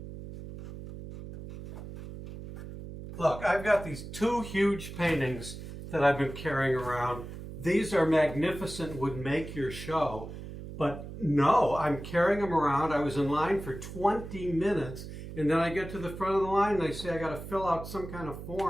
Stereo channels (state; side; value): noise; right; hum, 11 dB below the sound